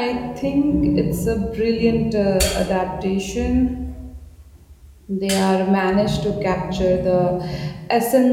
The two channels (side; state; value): both; identical; correlation 1.00